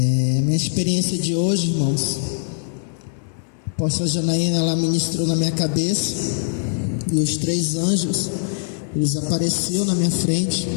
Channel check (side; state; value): right; silent; 57 dB below the other